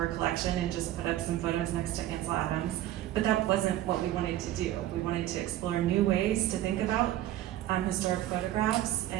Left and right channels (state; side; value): quieter; left; 13.5 dB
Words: collection and just put up some photos next to Ansel Adams, but that wasn't what we wanted to do. We wanted to explore new ways to think about historic photographs